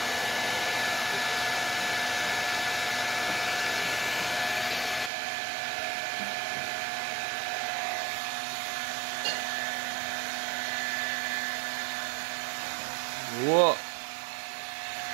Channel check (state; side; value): drops out; left; at 5.1 s